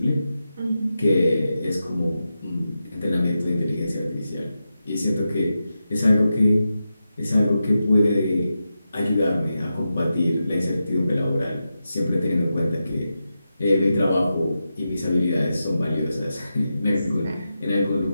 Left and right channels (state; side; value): inverted; both; correlation -0.90